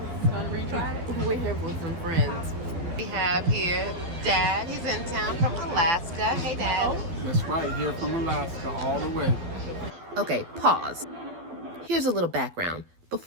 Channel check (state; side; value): late; left; 12 ms